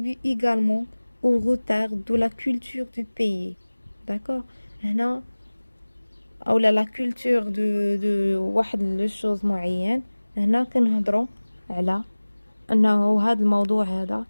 également au retard de la culture du pays. d'accord. هنا اولا لا كولتور دو واحد لو شوز معين. هنا كنهضروا على انه هذا الموضوع هذا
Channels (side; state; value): both; inverted; correlation -1.00